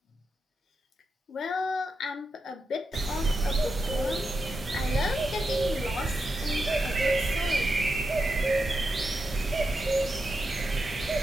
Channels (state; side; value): normal; both; correlation 0.87